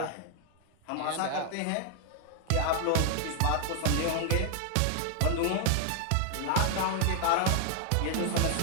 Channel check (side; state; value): both; different; correlation 0.00